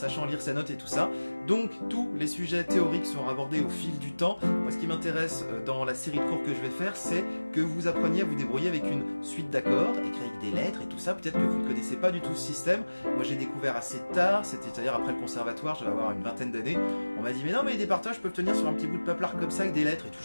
lire ses notes et tout ça. Donc tous les sujets théoriques seront abordés au fil du temps. Moi ce qui m'intéresse dans la série de cours que je vais faire, c'est que vous appreniez à vous débrouiller avec une suite d'accords, écrits avec des lettres et tout ça. Peut-être que vous ne connaissez pas du tout ce système. Moi j'ai découvert assez tard, c'est-à-dire après le conservatoire, je vais avoir une vingtaine d'années. On m'a dit mais non mais des partages peuvent tenir sur un petit bout de paplard comme ça avec des lettres et tout.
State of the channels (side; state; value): both; inverted; correlation -1.00